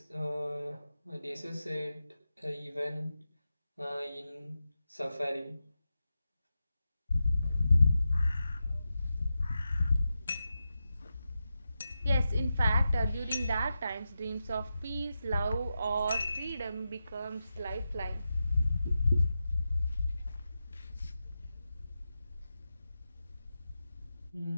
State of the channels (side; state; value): both; inverted; correlation -0.90